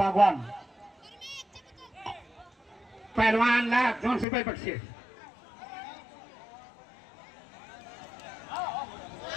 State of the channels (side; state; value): right; drops out; at 4.2 s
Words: पैलवानला 200 रुपये बक्षीस.